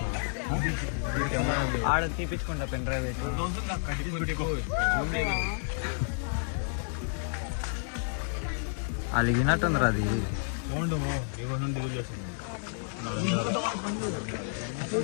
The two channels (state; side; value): silent; right; 58 dB below the other